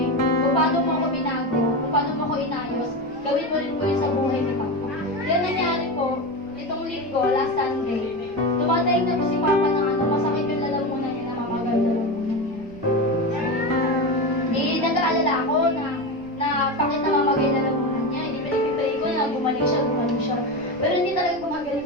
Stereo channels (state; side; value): noise; right; rumble, 23 dB below the sound